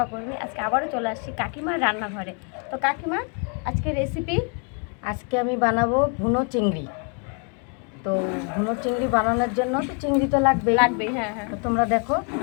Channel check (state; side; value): quieter; right; 37.6 dB